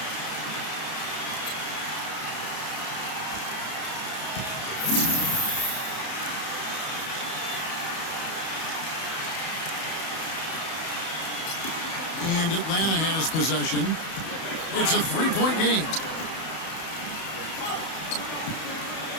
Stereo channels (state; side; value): late; right; 31 ms